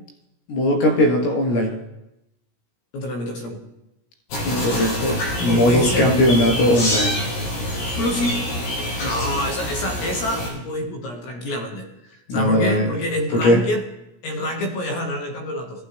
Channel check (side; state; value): right; late; 17 ms